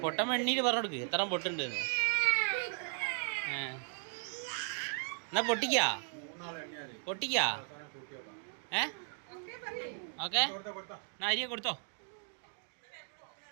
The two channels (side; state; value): left; silent; 53 dB below the other